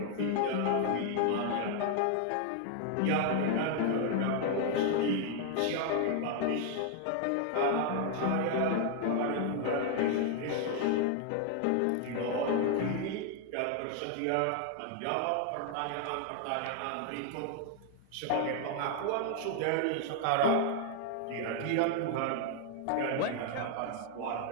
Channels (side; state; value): both; different; correlation 0.00